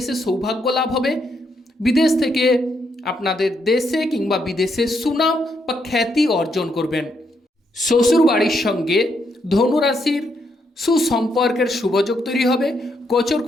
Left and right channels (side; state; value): both; normal; correlation 0.77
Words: সৌভাগ্য লাভ হবে। বিদেশ থেকে আপনাদের দেশে কিংবা বিদেশে সুনাম বা খ্যাতি অর্জন করবেন। শ্বশুর বাড়ির সঙ্গে ধনুরাশির সুসম্পর্কের শুভযোগ তৈরি হবে। গোচর